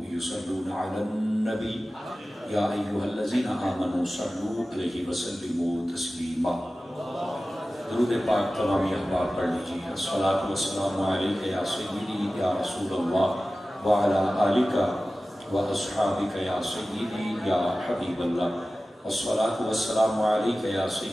یصلون علی النبی یا ایہا الذین آمنوا صلوا علیہ وسلموا تسلیما۔ درود پاک تمامی احباب پڑھ لیجیے۔ الصلاۃ والسلام علیک یا سیدی یا رسول اللہ وعلی آلک و اصحابک یا سیدی یا حبیب اللہ۔ الصلاۃ والسلام علیک یا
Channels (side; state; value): both; normal; correlation 0.96